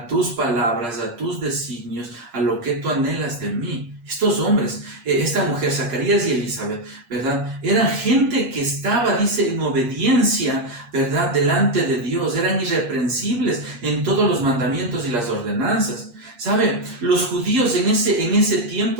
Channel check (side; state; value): left; late; 8.5 ms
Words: tus palabras, a tus designios, a lo que tú anhelas de mí. Estos hombres, esta mujer, Zacarías y Elizabeth, ¿verdad?, eran gente que estaba, dice, en obediencia, ¿verdad?, delante de Dios, eran irreprensibles en todos los mandamientos y las ordenanzas. ¿Sabe? Los judíos en ese